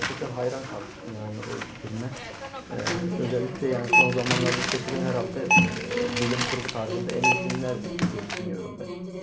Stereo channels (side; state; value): both; identical; correlation 1.00